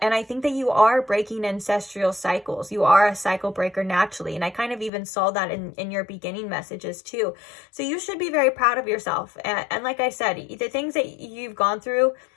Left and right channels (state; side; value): drops out; right; at 4.9 s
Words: And I think that you are breaking ancestral cycles. You are a cycle breaker naturally. And I kind of even saw that in your beginning messages too. So you should be very proud of yourself. And like I said, the things that you've gone through,